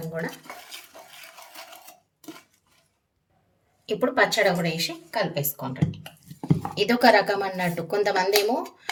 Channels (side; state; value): both; identical; correlation 1.00